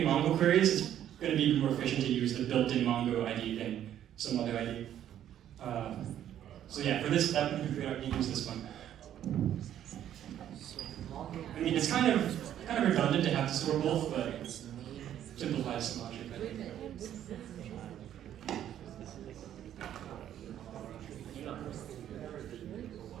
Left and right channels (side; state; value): left; quieter; 10.9 dB